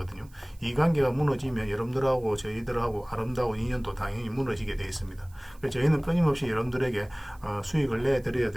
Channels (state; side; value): noise; right; hiss, 29 dB below the sound